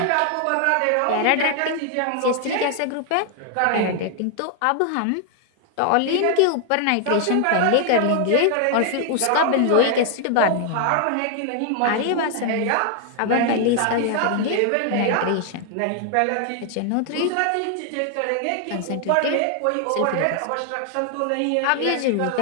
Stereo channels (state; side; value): different; both; correlation 0.00